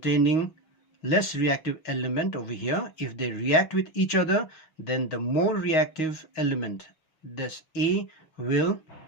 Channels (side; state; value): right; late; 6.3 ms